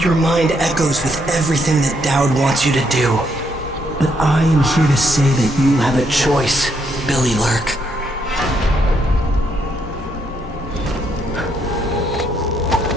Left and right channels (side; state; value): both; normal; correlation 0.74